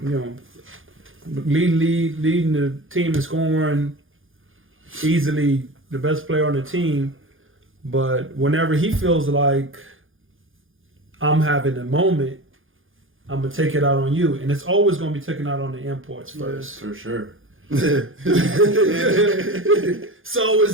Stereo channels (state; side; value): late; left; 0.59 ms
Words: leading the team in scoring, easily the best player on the team. But whenever he feels like I'm having a moment, I'm going to take it out on you. And it's always going to be taken out on the imports first. For sure. So it's